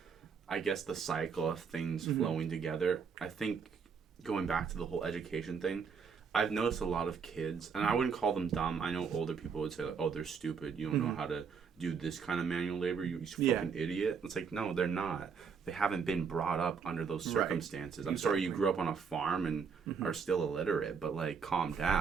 I guess, the cycle of things flowing together. I think going back to the whole education thing, I've noticed a lot of kids, and I wouldn't call them dumb. I know older people would say, like, oh, they're stupid. You don't know how to do this kind of manual labor. You fucking idiot. It's like, no, they're not. They haven't been brought up under those circumstances. I'm sorry you grew up on a farm and are still illiterate, but, like, calm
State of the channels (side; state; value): left; quieter; 6.0 dB